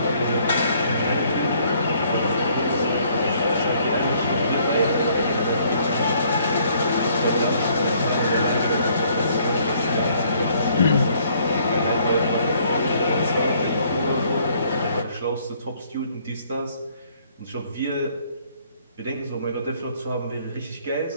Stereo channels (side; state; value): both; inverted; correlation -0.63